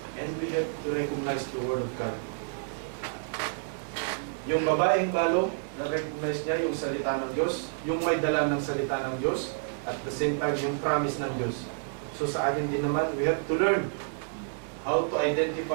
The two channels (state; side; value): silent; left; digital silence